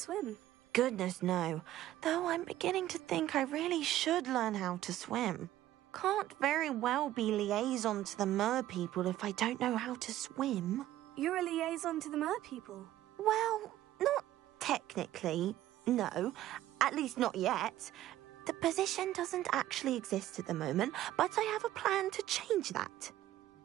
Goodness, no. Though I'm beginning to think I really should learn how to swim. Can't very well be liaison to the mer people if I don't know how to swim. You're a liaison to the mer people? Well, not technically, no. At least not yet. The position doesn't actually exist at the moment, but I have a plan to change that.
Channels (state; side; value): quieter; left; 13.8 dB